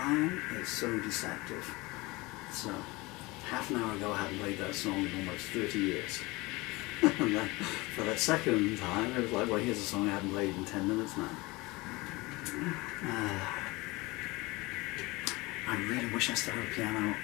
is so deceptive. So, half an hour ago I hadn't played that song in almost 30 years. And then for that second time, it was like, well, here's a song I haven't played in 10 minutes now. I really wish I still had a piano.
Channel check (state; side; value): quieter; right; 22.9 dB